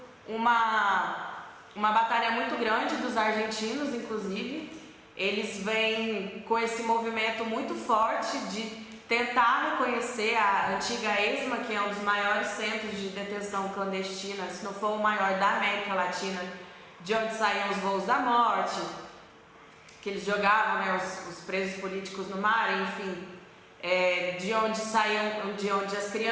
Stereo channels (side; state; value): both; identical; correlation 1.00